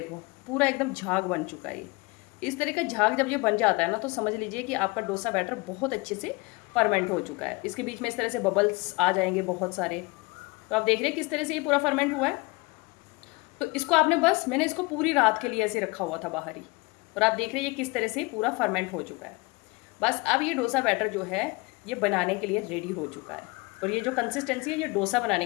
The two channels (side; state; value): right; quieter; 25.8 dB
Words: पूरा एकदम झाग बन चुका है। ये इस तरह का झाग जब ये बन जाता है ना तो समझ लीजिए कि आपका डोसा बैटर बहुत अच्छे से फर्मेंट हो चुका है। इसके बीच में इस तरह से बबल्स आ जाएंगे बहुत सारे। तो आप देख रहे हैं किस तरह से ये पूरा फर्मेंट हुआ है। तो इसको आपने बस, मैंने इसको पूरी रात के लिए ऐसे रखा हुआ था बाहर ही, और आप देख रहे हैं ये किस तरह से पूरा फर्मेंट हो चुका है। बस अब ये डोसा बैटर जो है ये बनाने के लिए रेडी हो चुका है, और ये जो कंसिस्टेंसी है ये डोसा बनाने